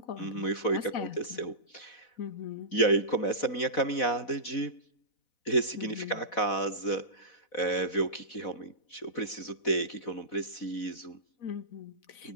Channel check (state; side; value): late; right; 4.1 ms